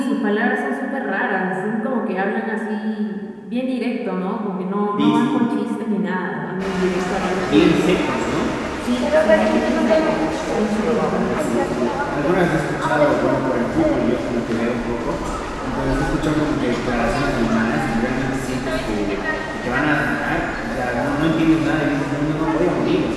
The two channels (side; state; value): both; identical; correlation 1.00